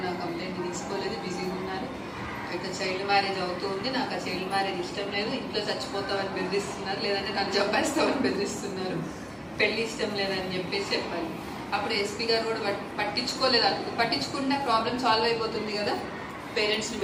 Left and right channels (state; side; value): identical; both; correlation 1.00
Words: నా కంప్లైంట్ తీసుకోలేదు, బిజీగా ఉన్నారు, ఇట్లా చైల్డ్ మ్యారేజ్ అవుతుంది, నాకు ఆ చైల్డ్ మ్యారేజ్ ఇష్టం లేదు, ఇంట్లో చచ్చిపోతామని బెదిరిస్తున్నారు, లేదంటే నన్ను చంపేస్తామని బెదిరిస్తున్నారు, పెళ్లి ఇష్టం లేదని చెప్పేసి చెప్పాలి. అప్పుడు ఎస్పీ గారు కూడా పట్టించుకోలేదు. పట్టించుకుంటే ప్రాబ్లం సాల్వ్ అయిపోతుంది కదా. పేరెంట్స్ని